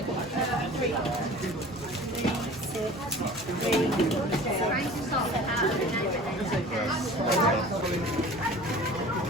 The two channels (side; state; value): both; normal; correlation 0.42